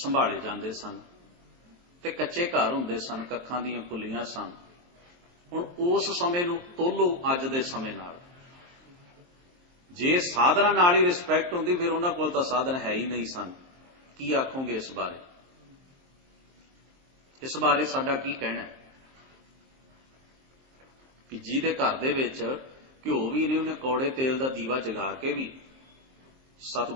ਜਾਂਦੇ ਸਨ, ਤੇ ਕੱਚੇ ਘਰ ਹੁੰਦੇ ਸਨ, ਕੱਖਾਂ ਦੀਆਂ ਕੁੱਲੀਆਂ ਸਨ। ਹੁਣ ਉਸ ਸਮੇਂ ਨੂੰ ਤੋਲੋ ਅੱਜ ਦੇ ਸਮੇਂ ਨਾਲ। ਜੇ ਸਾਧਨਾ ਨਾਲ ਹੀ ਰਿਸਪੈਕਟ ਹੁੰਦੀ, ਫਿਰ ਉਹਨਾਂ ਕੋਲ ਤਾਂ ਸਾਧਨ ਹੈ ਹੀ ਨਹੀਂ ਸਨ। ਕੀ ਆਖੋਗੇ ਇਸ ਬਾਰੇ? ਇਸ ਬਾਰੇ ਸਾਡਾ ਕੀ ਕਹਿਣਾ ਹੈ? ਕਿ ਜਿਹਦੇ ਘਰ ਦੇ ਵਿੱਚ ਘਿਓ ਵੀ ਨਹੀਂ, ਉਹਨੇ ਕੌੜੇ ਤੇਲ ਦਾ ਦੀਵਾ ਜਗਾ ਕੇ ਵੀ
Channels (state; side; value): late; left; 23 ms